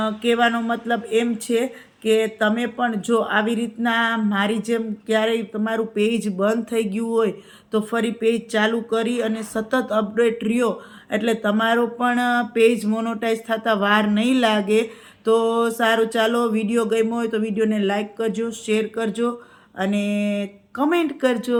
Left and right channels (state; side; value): identical; both; correlation 1.00